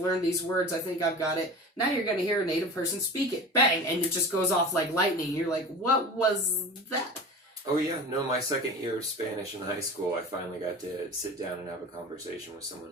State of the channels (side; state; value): both; normal; correlation 0.35